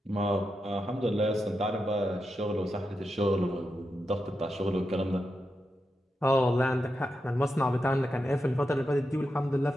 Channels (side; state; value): both; normal; correlation 0.87